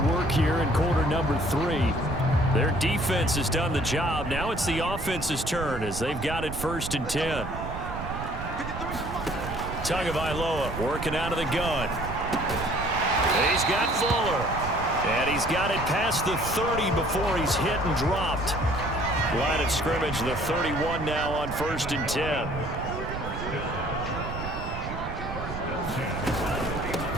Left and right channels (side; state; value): right; noise; rumble, 8 dB below the sound